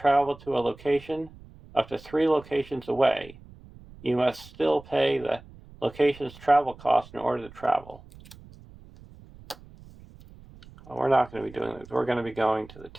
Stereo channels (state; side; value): noise; right; rumble, 21 dB below the sound